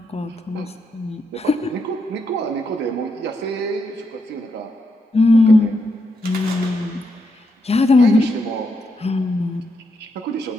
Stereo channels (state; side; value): normal; both; correlation 0.81